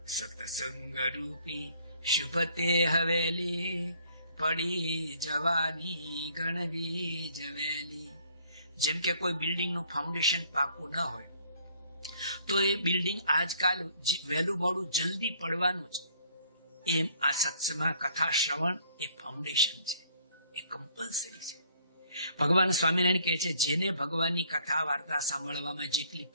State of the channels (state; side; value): inverted; both; correlation -0.61